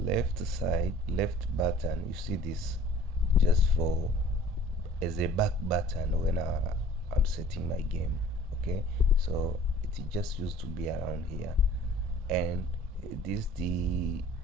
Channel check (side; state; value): both; normal; correlation 0.50